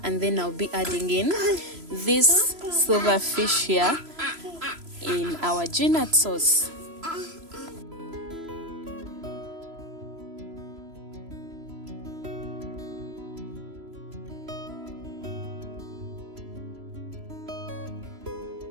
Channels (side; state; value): left; late; 3.0 ms